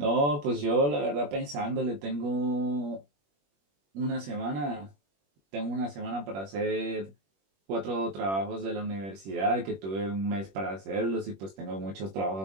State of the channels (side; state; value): left; late; 21 ms